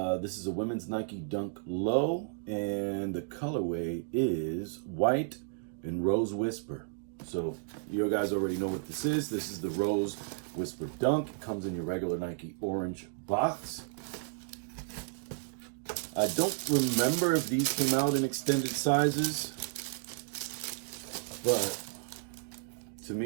is a women's Nike Dunk Low, and the colorway is white and Rose Whisper. So you guys already know what this is. This is the Rose Whisper Dunk. It comes in your regular Nike orange box. I don't remember if these came out in extended sizes, but to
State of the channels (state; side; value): silent; left; digital silence